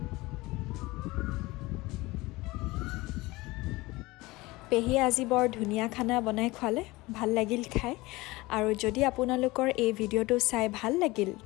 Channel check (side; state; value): right; quieter; 21.2 dB